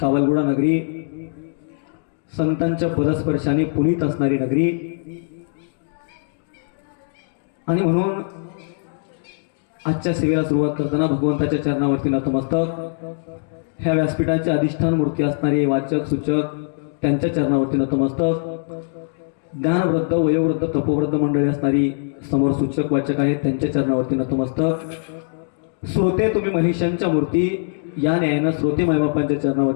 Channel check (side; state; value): right; silent; digital silence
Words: नगरी, संतांच्या पदस्पर्शाने पुनीत असणारी नगरी आणि म्हणून आजच्या सेवेला सुरुवात करताना भगवंताच्या चरणावरती नतमस्तक, ह्या व्यासपीठाचे अधिष्ठान मूर्ती असणारे वाचक सूचक त्यांच्या चरणावरती नतमस्तक, ज्ञानवृद्ध वयोवृद्ध तपोवृद्ध मंडळी असणारी समोर सूचक वाचक आहेत त्यांच्या चरणावरती नतमस्तक, श्रोते तुम्ही महिषांच्या मूर्ती या न्यायानं श्रोते मायबापांच्या